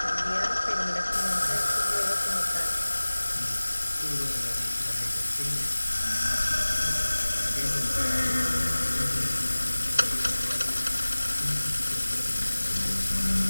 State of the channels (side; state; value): both; inverted; correlation -1.00